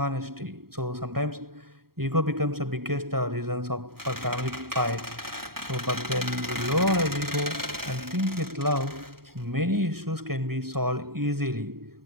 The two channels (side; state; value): left; late; 0.94 ms